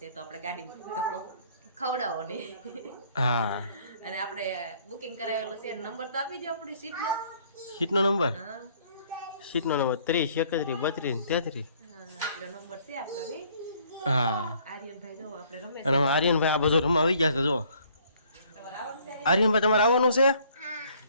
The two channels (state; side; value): inverted; both; correlation -0.61